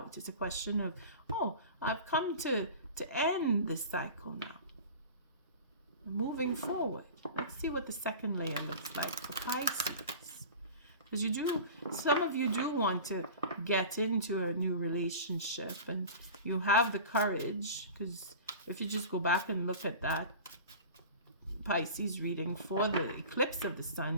It's a question of, I've come to end this cycle now. Moving forward. Let's see what the second layer looks like for Pisces. Because some of you do want to get into a new relationship, and you have the courage, because if you just go back and look at that Pisces reading for the eclipse of the sun,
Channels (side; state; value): both; inverted; correlation -0.36